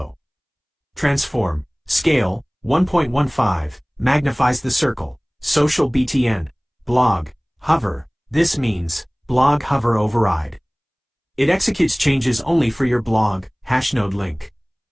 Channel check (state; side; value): identical; both; correlation 1.00